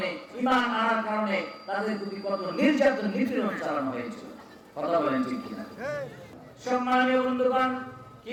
ঈমান আনার কারণে তাদের প্রতি কত নির্যাতন নিপীড়ন চালানো হয়েছিল। কথা বলেন ঠিক কিনা? সম্মানীয় বন্ধুগণ,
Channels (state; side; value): identical; both; correlation 1.00